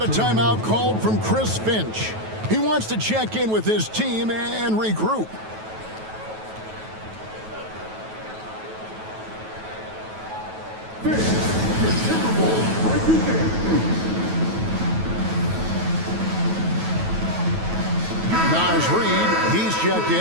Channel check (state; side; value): late; left; 9.2 ms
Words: a timeout called from Chris Finch. He wants to check in with his team and regroup. Naz Reid, he's checked